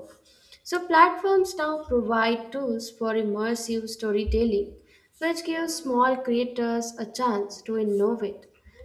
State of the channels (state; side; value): identical; both; correlation 1.00